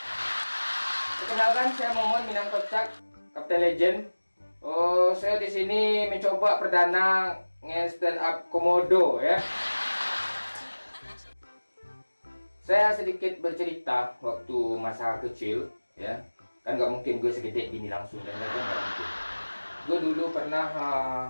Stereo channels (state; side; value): inverted; both; correlation -1.00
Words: Perkenalkan saya Momon Minang Kocak, Kapten Legend. Oh, saya di sini mencoba perdana nge-stand up komodo ya. Saya sedikit bercerita waktu masa kecil ya. Kan nggak mungkin gue segede gini langsung dan nggak mungkin. Gue dulu pernah